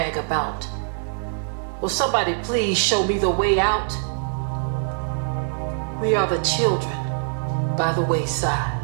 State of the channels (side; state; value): left; silent; 63 dB below the other